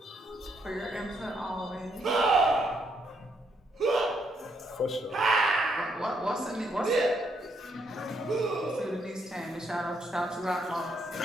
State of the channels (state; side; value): normal; both; correlation 0.74